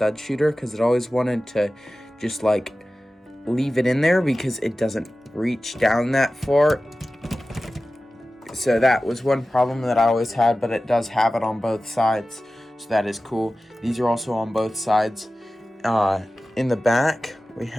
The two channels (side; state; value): both; normal; correlation 0.95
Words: shooter because it always wanted to just like leave it in there because it doesn't reach down that far. So that was one problem that I always had, but it does have it on both sides. So that is cool. These are also on both sides. In the back, we